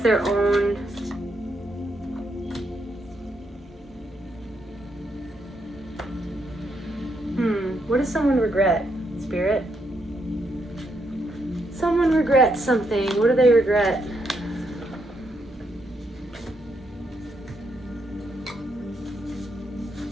their own what does someone regret, Spirit? Someone regrets something. What do they regret?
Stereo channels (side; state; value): both; normal; correlation 0.78